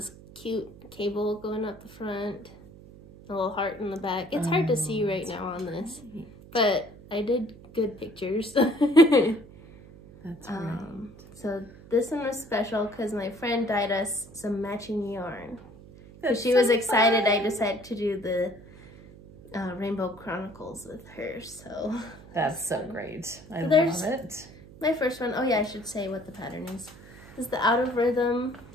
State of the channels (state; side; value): noise; right; hum, 19 dB below the sound